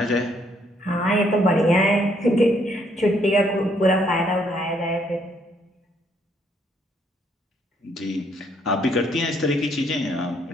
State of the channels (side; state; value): both; normal; correlation 0.69